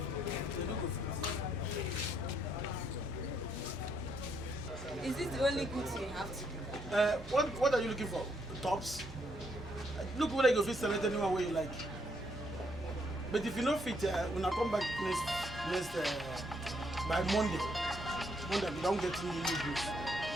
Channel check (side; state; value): both; normal; correlation 0.73